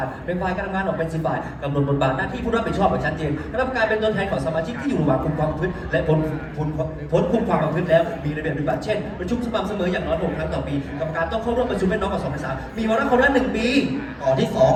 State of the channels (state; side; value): identical; both; correlation 1.00